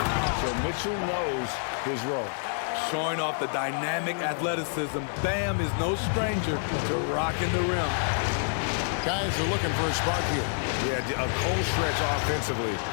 so Mitchell knows his role. Showing off the dynamic athleticism, Bam is no stranger to rocking the rim. Guys are looking for a spark here. Yeah, a cold stretch offensively,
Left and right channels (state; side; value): silent; right; 59 dB below the other